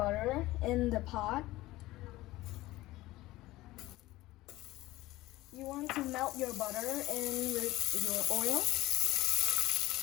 in the pot. You want to melt your butter in with your oil.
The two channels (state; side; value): quieter; right; 17.9 dB